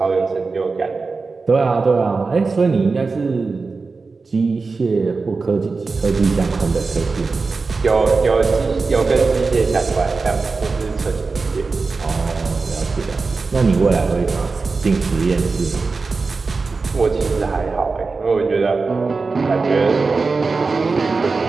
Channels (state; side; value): quieter; left; 4.2 dB